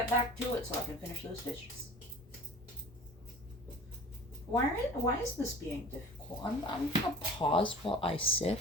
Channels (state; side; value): normal; both; correlation 0.42